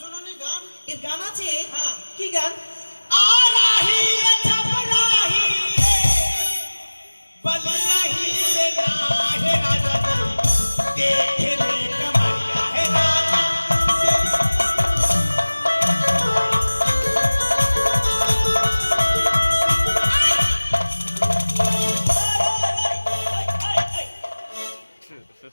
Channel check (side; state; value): both; inverted; correlation -1.00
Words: গান? এর গান আছে? হ্যাঁ। কি গান? आराही रे छपराही रे बलियाही रे नाहे राजा देख ले कमरिया है राजा